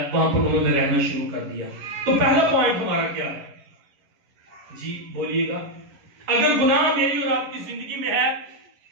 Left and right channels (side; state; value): left; late; 11 ms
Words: وہاں پر انہوں نے رہنا شروع کر دیا. تو پہلا پوائنٹ ہمارا کیا ہے؟ جی بولیے گا. اگر گناہ میری اور آپ کی زندگی میں ہے،